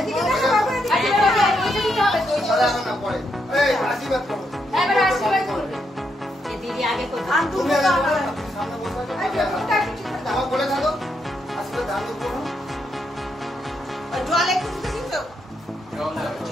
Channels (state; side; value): normal; both; correlation 0.80